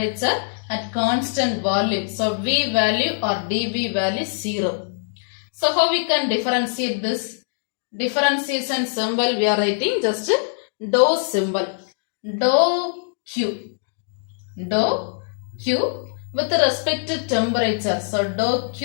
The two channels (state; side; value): silent; right; digital silence